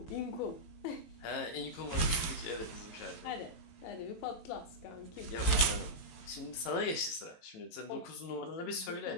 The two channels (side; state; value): right; late; 18 ms